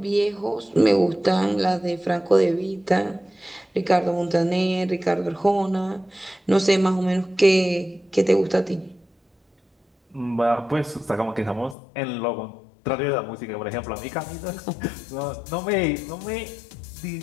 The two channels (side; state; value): right; drops out; at 11.8 s